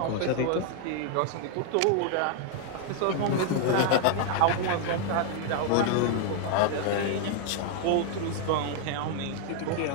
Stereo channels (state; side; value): different; both; correlation 0.00